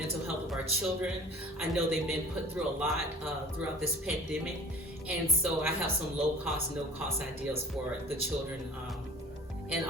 health of our children. I know they've been put through a lot throughout this pandemic. And so I have some low cost, no cost ideas for the children and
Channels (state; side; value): normal; both; correlation 0.45